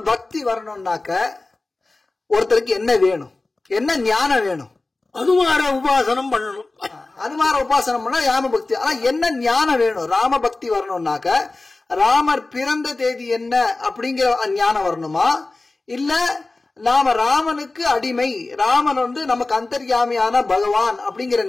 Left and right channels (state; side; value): quieter; right; 3.3 dB